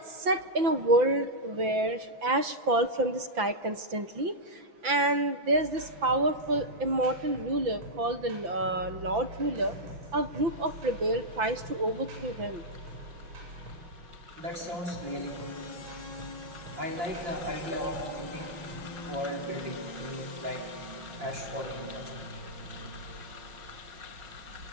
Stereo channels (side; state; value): left; late; 5.9 ms